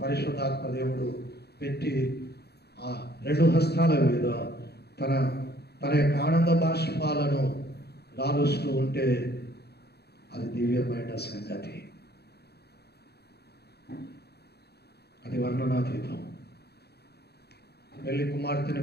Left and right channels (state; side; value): late; right; 0.48 ms